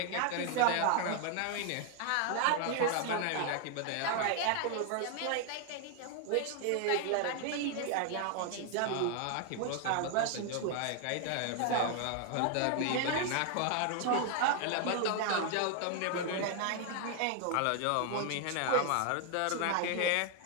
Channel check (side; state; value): both; different; correlation 0.00